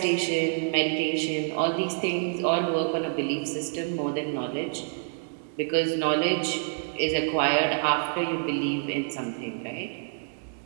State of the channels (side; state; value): left; silent; digital silence